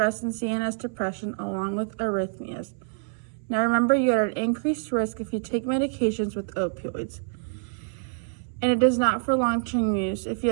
and CNS depression along with arrhythmias. Now remember, you are at increased risk if you take medications with opioids, and it is not for long-term use. If you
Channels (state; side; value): silent; left; 61 dB below the other